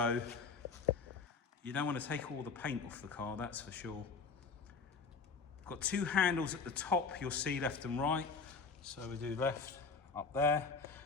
You don't want to take all the paint off the car, that's for sure. Got two handles at the top, you'll see left and right. So we do left, up there.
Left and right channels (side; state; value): right; quieter; 4.9 dB